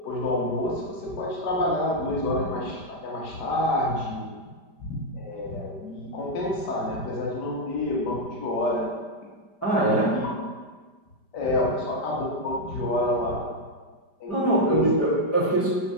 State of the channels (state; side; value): late; right; 5.1 ms